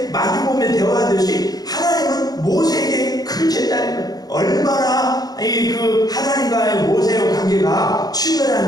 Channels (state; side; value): late; right; 0.19 ms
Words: 마주보며 대화하듯이 하나님은 모세에게 그렇게 했다는 거예요. 얼마나 그 하나님과의 모세의 관계가